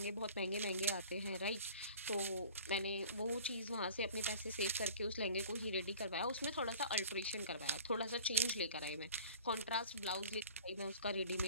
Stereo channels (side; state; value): both; inverted; correlation -0.45